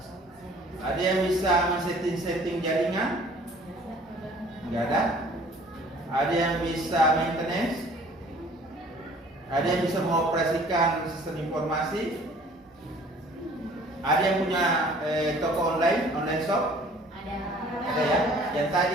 Ada yang bisa men-setting jaringan? Tidak ada? Ada yang bisa maintenance? Ada yang bisa mengoperasikan sistem informasi? Ada yang punya toko online shop? Ada ya? Yang tadi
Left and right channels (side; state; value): both; normal; correlation 0.53